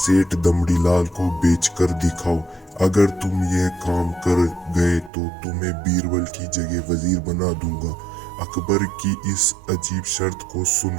दमड़ीलाल को बेचकर दिखाओ। अगर तुम यह काम कर गए तो तुम्हें बीरबल की जगह वजीर बना दूंगा। अकबर की इस अजीब शर्त को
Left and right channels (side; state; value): left; drops out; at 5.1 s